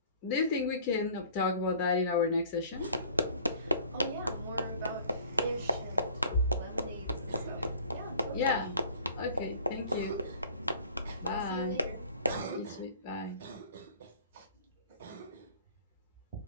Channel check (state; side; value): inverted; both; correlation -0.50